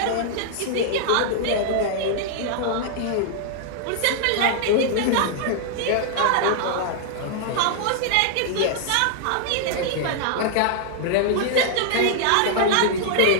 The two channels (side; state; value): both; different; correlation -0.01